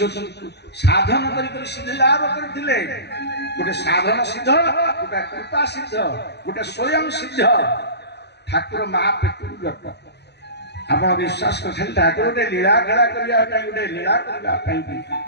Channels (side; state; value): right; late; 0.49 ms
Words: ସାଧନ କରି ସିଦ୍ଧି ଲାଭ କରିଥିଲେ ଗୋଟେ ସାଧନ ସିଦ୍ଧ ଗୋଟେ କୃପା ସିଦ୍ଧ ଗୋଟେ ସ୍ୱୟଂ ସିଦ୍ଧ ଠାକୁର ମା ପେଟରୁ ଜଟ ଆପଣ ବିଶ୍ୱାସ କରିଥିଲେ ଠାକୁର ଗୋଟେ ଲୀଳା ଖେଳା କରିବା ପାଇଁ ଗୋଟେ ଲୀଳା କରିବା ପାଇଁ